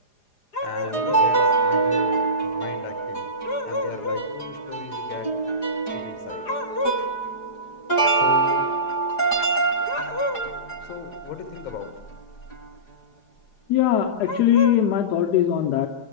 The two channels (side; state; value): right; late; 4.9 ms